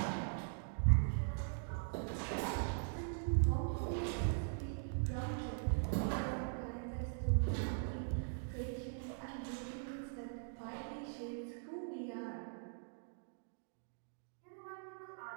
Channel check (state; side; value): silent; left; digital silence